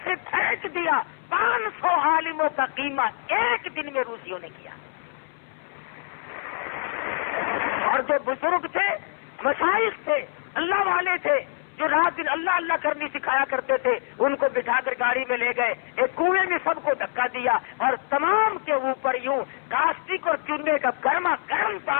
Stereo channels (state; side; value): silent; right; 62 dB below the other